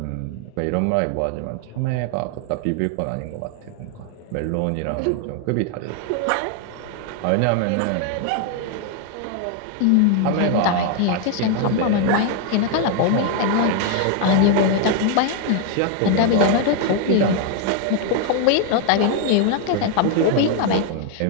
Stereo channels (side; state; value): both; different; correlation 0.01